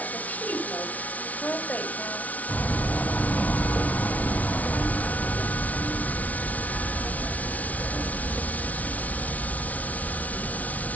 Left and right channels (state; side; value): late; right; 0.071 ms